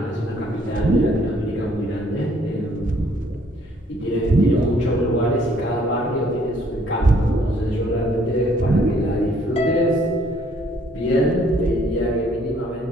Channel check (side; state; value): both; normal; correlation 0.63